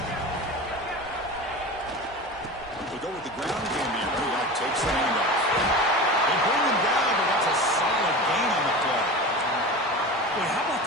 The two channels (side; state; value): both; normal; correlation 0.31